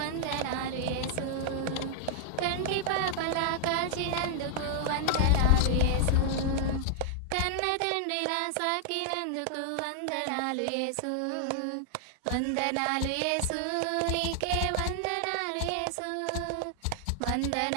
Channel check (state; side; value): different; both; correlation 0.00